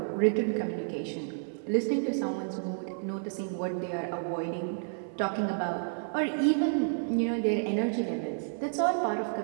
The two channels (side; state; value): left; silent; 57 dB below the other